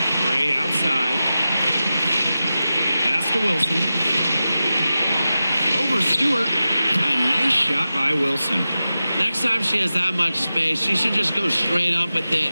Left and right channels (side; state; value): both; inverted; correlation -0.93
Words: Gray outside. Pass to Wilson. Over Stewart. A nice shot by Wilson. Next time she has that much space, she should just go straight up with